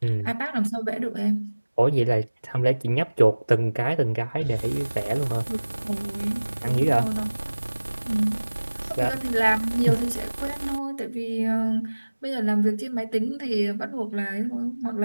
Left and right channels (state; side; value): inverted; both; correlation -1.00